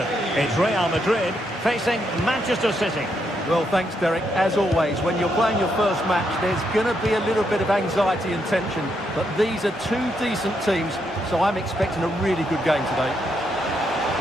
It's Real Madrid facing Manchester City. Well, thanks, Derek. As always, when you're playing your first match, there's going to be a little bit of anxiety and tension. But these are two decent teams, so I'm expecting a really good game today.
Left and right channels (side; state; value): both; normal; correlation 0.78